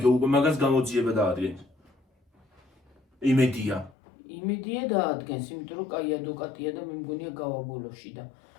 უკვე მაგას გამოძიება დაადგენ. იმედია. იმედია დაადგენს, იმიტომ რომ კაი ადვოკატია და მე მგონია გავაბოლოში და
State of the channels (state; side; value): drops out; right; at 3.9 s